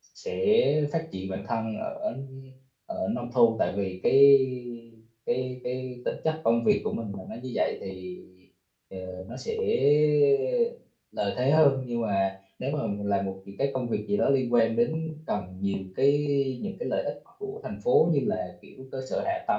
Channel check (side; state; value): both; identical; correlation 1.00